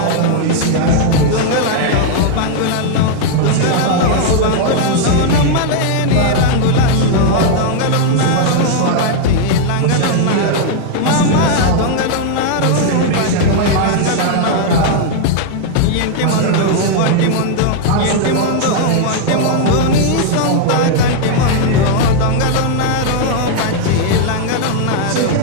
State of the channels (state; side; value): different; both; correlation 0.00